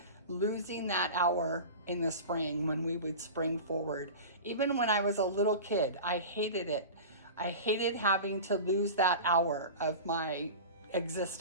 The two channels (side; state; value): both; inverted; correlation -0.32